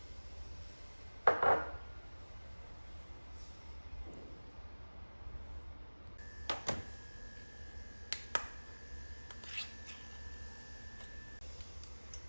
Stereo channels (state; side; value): inverted; both; correlation -1.00